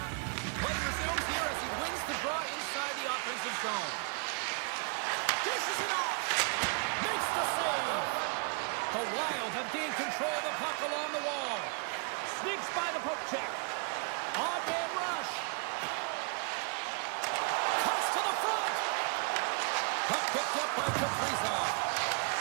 Play resumes here as he wins the draw inside the offensive zone. Dishes it off. Makes the save. The Wild have gained control of the puck along the wall. Sneaks by the poke check. On-man rush. Puck picked up by Kaprizov.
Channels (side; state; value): left; quieter; 37.3 dB